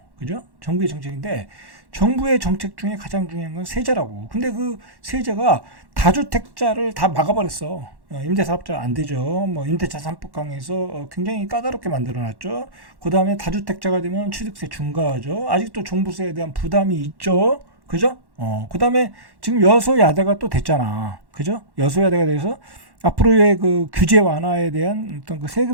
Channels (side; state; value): left; late; 1.1 ms